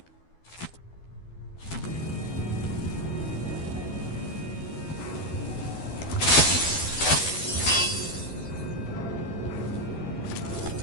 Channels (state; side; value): late; right; 12 ms